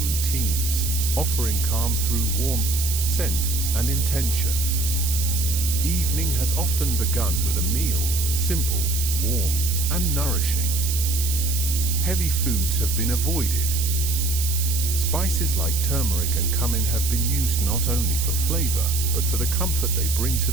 offering calm through warmth, scent, and intention. Evening has often begun with a meal, simple, warm, and nourishing. Heavy foods have been avoided. Spices like turmeric and cumin have been used not only for flavor, but for the comfort they bring to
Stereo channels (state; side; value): noise; right; hiss, 3 dB below the sound